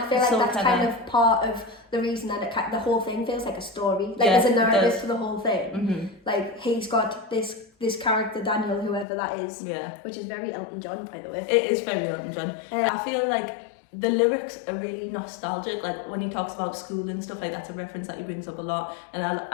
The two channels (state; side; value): drops out; right; at 9.1 s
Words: feel like so that's clever. kind of part of the reason that the whole thing feels like a story. Like, Yeah, there's a narrative does. to the whole thing. Like, he's got this character, Daniel, whoever that is. Yeah. Which is very Elton John, by the way. It is very Elton John. I feel like the lyrics are really nostalgic. Like when he talks about school and stuff, like that's a reference that he brings up a lot, and